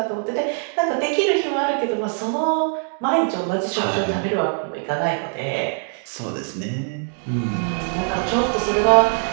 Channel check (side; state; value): left; silent; 64 dB below the other